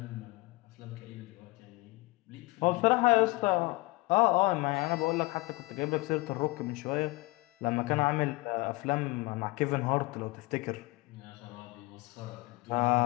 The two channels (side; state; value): right; quieter; 23.4 dB